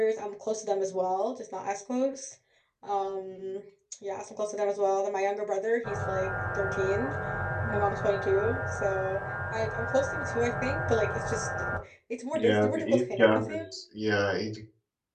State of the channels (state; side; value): identical; both; correlation 1.00